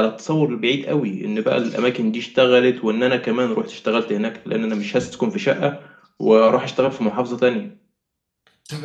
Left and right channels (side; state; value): both; identical; correlation 1.00